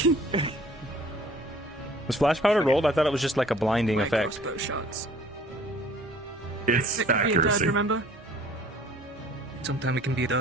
Was flash powder rolled? I thought it was just like a blinding effect. Crossbow shots. It's It could be a dud, accuracy. remember? Sometimes it can be a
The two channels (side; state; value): both; normal; correlation 0.52